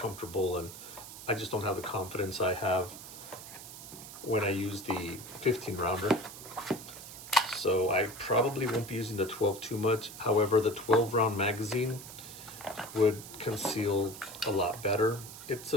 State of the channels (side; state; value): right; noise; hiss, 13 dB below the sound